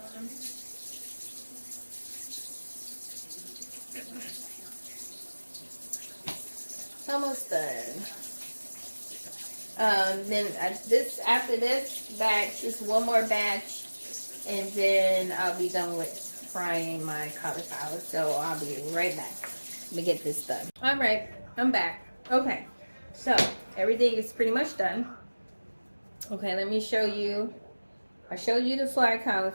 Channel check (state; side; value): inverted; both; correlation -1.00